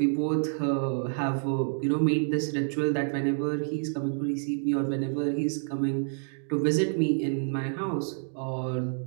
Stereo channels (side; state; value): left; silent; digital silence